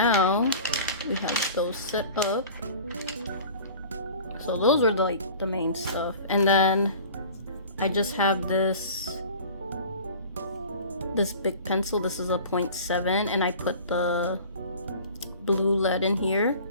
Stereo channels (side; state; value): both; inverted; correlation -0.42